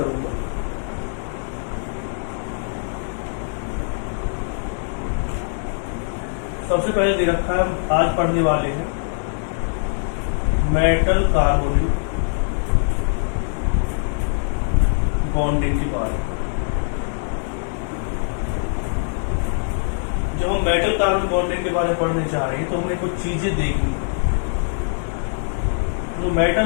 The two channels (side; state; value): right; silent; digital silence